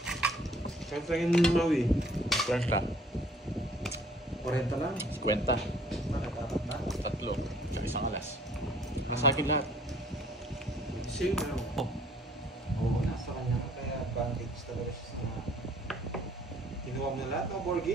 Kahit lang yung mawi. 50. 40 lang. 50. Nakatapat na. Tatlo. Tsaka isang alas. Nasa akin lahat. Same na ako. Oh. Oo, nasa kanya ka. Kaya advantage talaga siya sa kinuha mo na lahat, no,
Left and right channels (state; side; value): normal; both; correlation 0.58